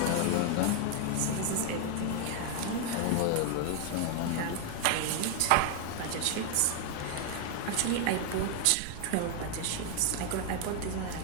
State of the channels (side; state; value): both; different; correlation 0.00